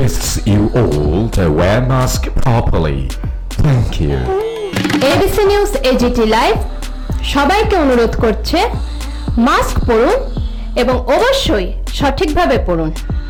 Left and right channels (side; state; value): both; identical; correlation 1.00